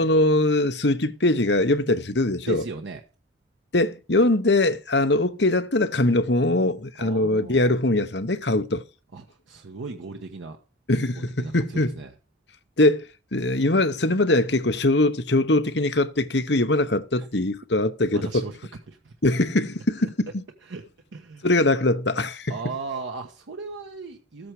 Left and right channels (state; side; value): normal; both; correlation 0.28